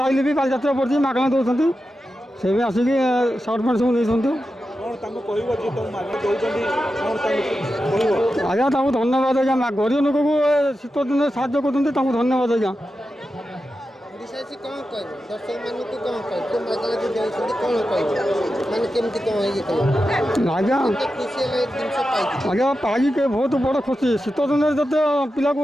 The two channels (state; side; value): normal; both; correlation 0.90